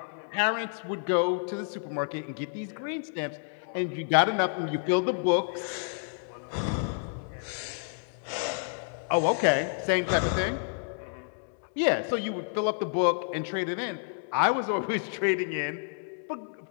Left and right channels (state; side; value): silent; right; digital silence